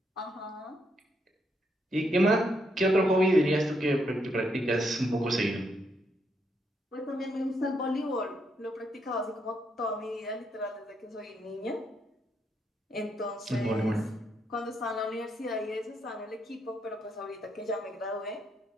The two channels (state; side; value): normal; both; correlation 0.77